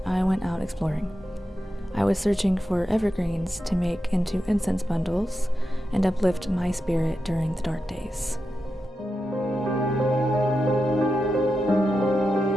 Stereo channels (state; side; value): normal; both; correlation 0.89